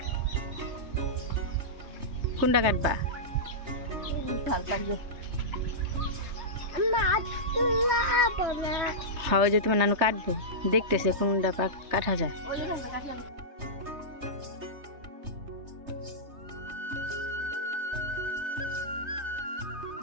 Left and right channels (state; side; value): late; left; 3.3 ms